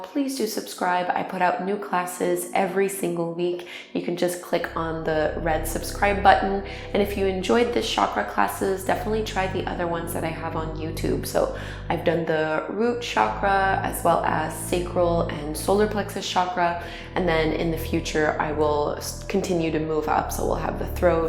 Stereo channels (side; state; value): both; identical; correlation 1.00